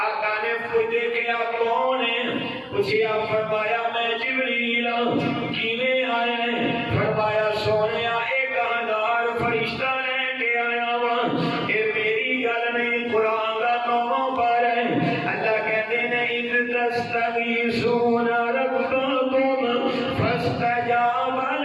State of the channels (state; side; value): identical; both; correlation 1.00